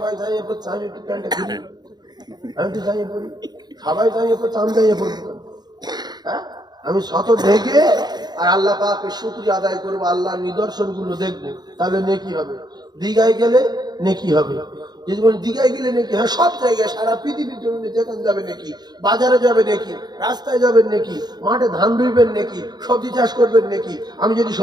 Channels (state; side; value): late; left; 0.20 ms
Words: যাই এরপর আমি একটু প্যান্টটা খুলি, আমি একটু যাইয়ে পড়ি, সবাই যাই এরপর চাম যাইয়ে পড়ি, হ্যাঁ আমি শত ঢেকে আর আল্লাহ পাকের শুকরিয়া আদায় করবো, আল্লাহর নিদর্শন গুলো দেখবো, তাহলে নেকি হবে। দীঘায় গেলে নেকি হবে, যদি বলি দীঘায় গেলে নেকি, হ্যাঁ সব জায়গায় সারা পৃথিবীর জন্য যেখানে যাবে নেকি, বাজারে যাবে নেকি, রাস্তায় যাবেন নেকি, মাঠে ধান রুইবেন নেকি, সবজি চাষ করবেন নেকি। আমি যদি